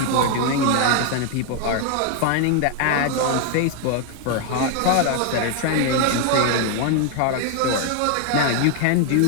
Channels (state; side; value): different; both; correlation 0.00